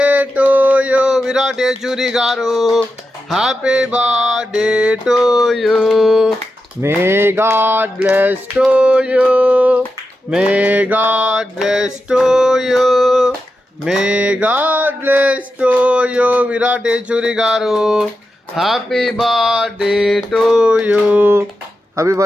to you Virat Yechury garu. Happy birthday to you. May God bless to you, may God bless to you, may God bless to you Virat Yechury garu. Happy birthday to you. Happy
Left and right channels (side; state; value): both; normal; correlation 0.89